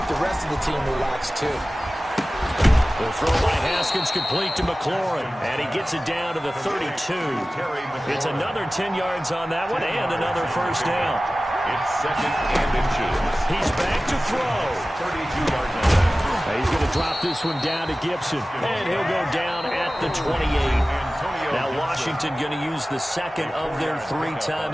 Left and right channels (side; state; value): both; normal; correlation 0.96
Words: the rest of the team relaxed, too. The throw by Haskins complete to McLaurin, and he gets it down to the 32. It's another 10 yards on that one and another first down. It's 2nd and inches. He's back to throw. 32-yard line. He's going to drop this one down to Gibson, and he'll go down at the 28. Now Washington going to use the 2nd of their 3